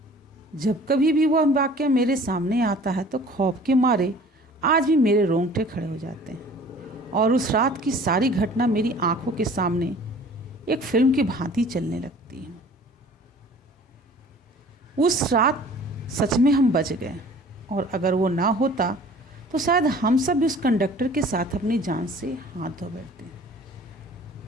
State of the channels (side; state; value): both; normal; correlation 0.48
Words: जब कभी भी वह वाक़या मेरे सामने आता है तो खौफ के मारे आज भी मेरे रोंगटे खड़े हो जाते हैं और उस रात की सारी घटना मेरी आंखों के सामने एक फिल्म की भांति चलने लगती है। उस रात सच में हम बच गए और अगर वो ना होता तो शायद हम सब भी उस कंडक्टर के साथ अपनी जान से हाथ धो बैठते।